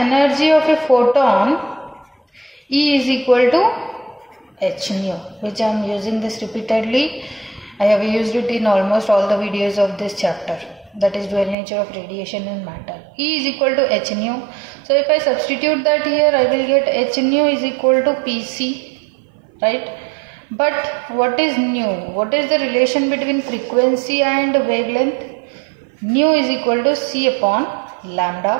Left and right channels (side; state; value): left; drops out; at 11.6 s